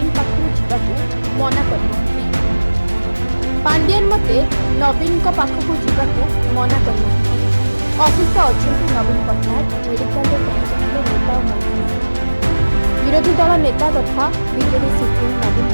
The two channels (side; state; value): both; inverted; correlation -1.00